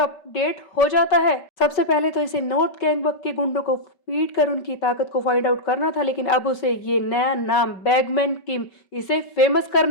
हो जाता है। सबसे पहले तो इसे नॉर्थ गैंगबक के गुंडों को पीट कर उनकी ताकत को फाइंड आउट करना था, लेकिन अब उसे ये नया नाम बैगमैन किम, इसे फेमस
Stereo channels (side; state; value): right; late; 5.2 ms